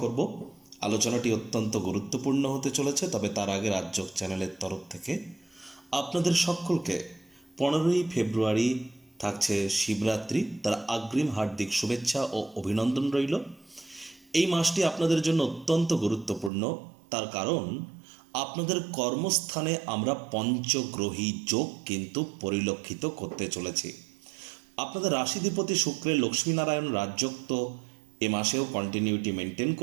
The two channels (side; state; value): left; drops out; at 16.5 s